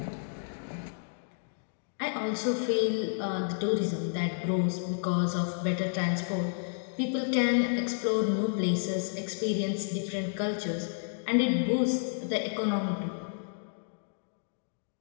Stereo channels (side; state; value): right; silent; digital silence